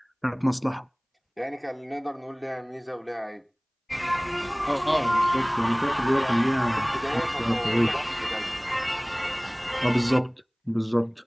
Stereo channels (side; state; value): both; identical; correlation 1.00